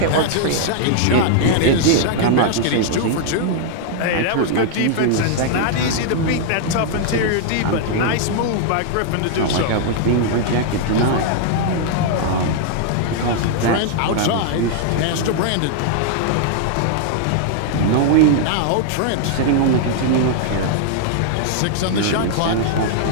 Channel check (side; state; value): both; different; correlation -0.01